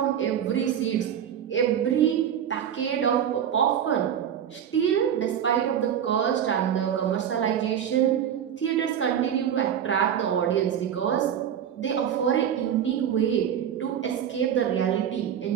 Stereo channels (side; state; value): left; quieter; 9.2 dB